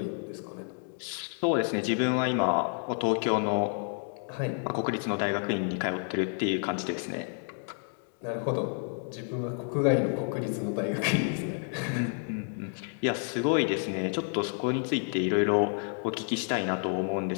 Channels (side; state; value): right; silent; 56 dB below the other